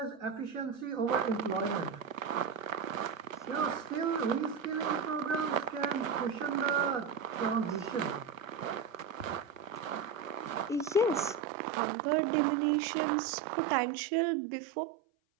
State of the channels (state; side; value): drops out; left; at 11.4 s